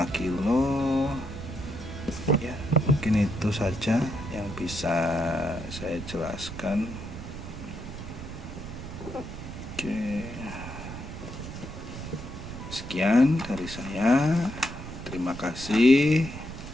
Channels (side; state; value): right; noise; rumble, 10 dB below the sound